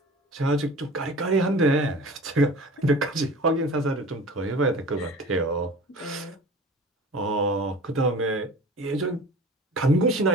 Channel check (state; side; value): normal; both; correlation 0.40